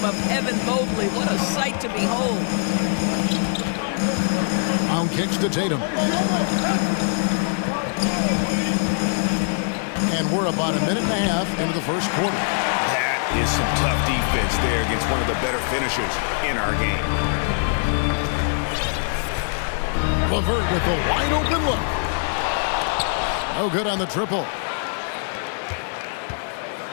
Evan Mobley. What a sight to behold. Brown kicks to Tatum. And we're about a minute and a half into the first quarter. That is some tough defense there against one of the better finishers in our game. LeVert with the wide open look. No good on the triple.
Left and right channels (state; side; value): silent; right; digital silence